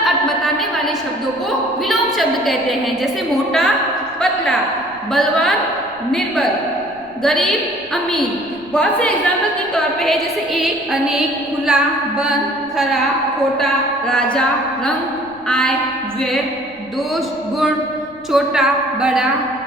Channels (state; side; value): noise; left; rumble, 28 dB below the sound